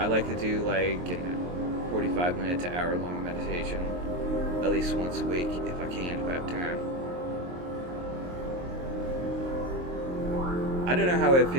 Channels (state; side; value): late; left; 23 ms